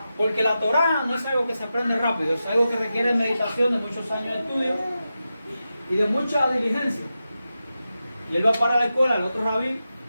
Porque la Torah no es algo que se aprende rápido, es algo que requiere meditación de muchos años de estudio y de mucha diligencia. Y él va para la escuela, el otro rabí,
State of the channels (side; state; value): both; inverted; correlation -0.91